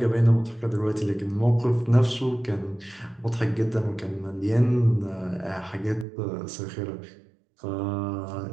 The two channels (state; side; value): drops out; left; at 6.1 s